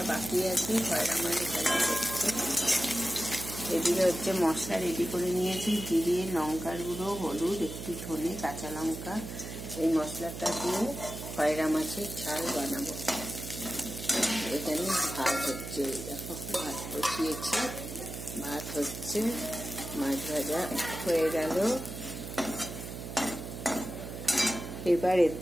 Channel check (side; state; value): right; noise; hum, 9 dB below the sound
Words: বাকি আছে, খয়রা মাছ ভাজা হচ্ছে। এদিকে হচ্ছে মশলা রেডি করে নিয়েছি, জিরে, লঙ্কার গুঁড়ো, হলুদ, একটু ধনে, কাঁচা লঙ্কা। এই মশলাটা দিয়ে খয়রা মাছের ঝাল বানাবো। এখানে ভাত হচ্ছে, দেখো ভাত বসিয়েছি, ভাত হচ্ছে, মাছ ভাজা হয়ে গেল। এবার